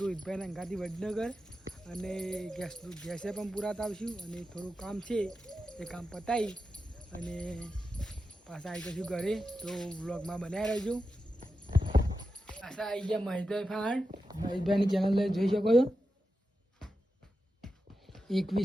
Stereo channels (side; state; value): both; normal; correlation 0.90